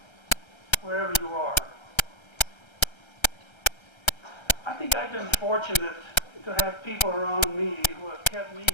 wherever you are. I think I've been fortunate to have people around me who have kept me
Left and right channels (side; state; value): right; late; 1.3 ms